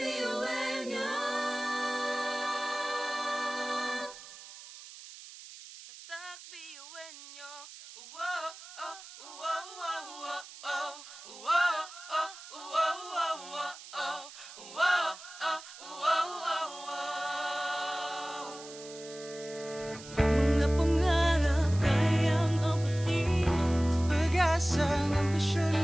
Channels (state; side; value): noise; right; hiss, 16 dB below the sound